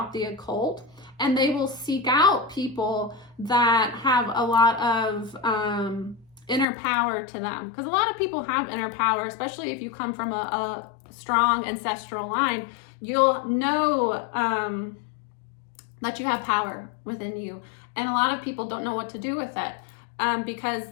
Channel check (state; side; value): drops out; right; at 6.7 s